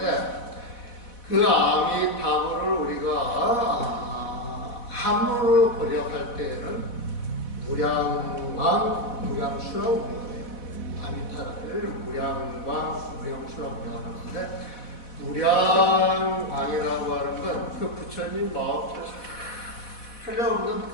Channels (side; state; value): right; late; 4.1 ms